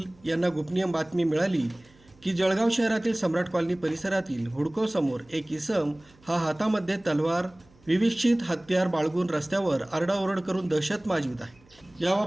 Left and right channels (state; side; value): noise; right; hum, 29 dB below the sound